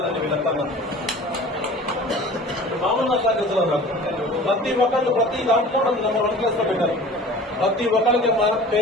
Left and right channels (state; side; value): normal; both; correlation 0.43